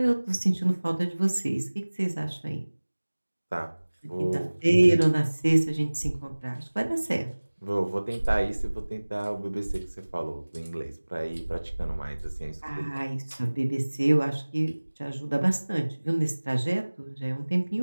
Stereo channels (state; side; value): inverted; both; correlation -1.00